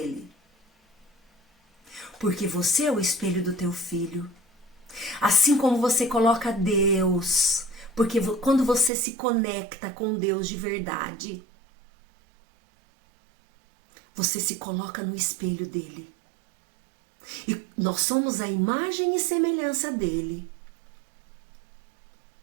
Porque você é o espelho do teu filho. Assim como você coloca Deus, porque quando você se conecta com Deus de verdade, você se coloca no espelho dele. E nós somos a imagem e semelhança dele.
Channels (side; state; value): left; drops out; at 8.9 s